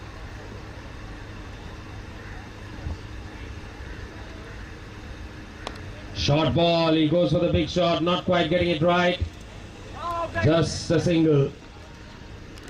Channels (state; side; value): identical; both; correlation 1.00